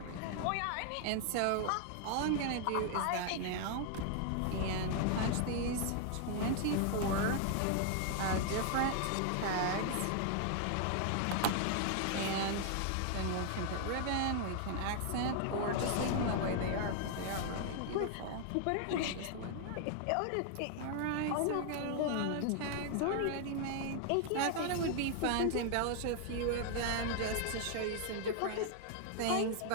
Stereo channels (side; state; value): both; different; correlation 0.00